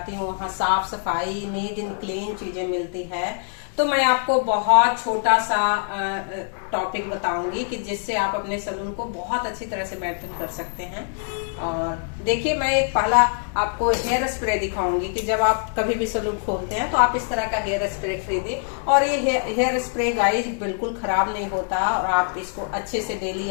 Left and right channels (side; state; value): right; silent; 62 dB below the other